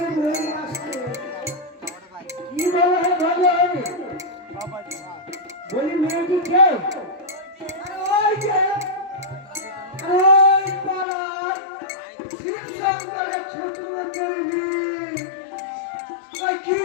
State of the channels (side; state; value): right; drops out; at 11.1 s